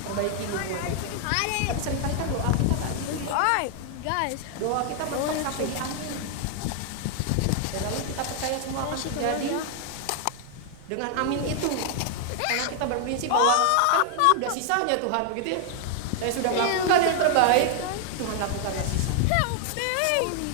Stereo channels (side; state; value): both; different; correlation 0.00